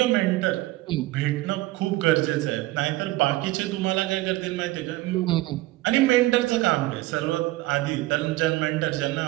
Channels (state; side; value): quieter; left; 18.5 dB